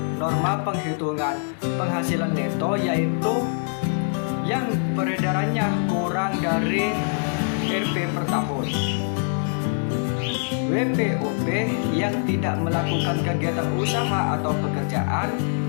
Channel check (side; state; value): right; silent; 63 dB below the other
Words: norma penghitungan penghasilan neto, yaitu yang peredarannya kurang dari Rp per tahun. WPOP yang tidak melakukan kegiatan usaha atau pekerjaan